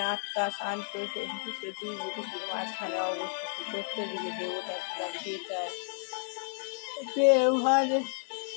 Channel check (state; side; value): silent; right; 56 dB below the other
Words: আত্মা শান্ত সঞ্চিত দুই বুকুটির মাঝখানে অবস্থিত সত্য দিকে দেবতা ছিলাম চিতায় ব্যবহারে